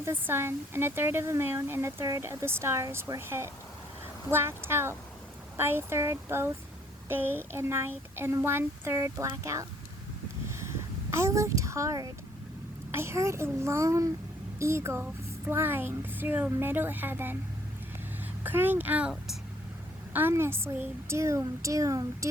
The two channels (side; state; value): both; normal; correlation 0.64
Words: the sun, and a third of the moon, and a third of the stars were hit, blacked out by a third both day and night, and 1/3 blackout. I looked hard. I heard a lone eagle flying through middle heaven, crying out ominously, doom, doom,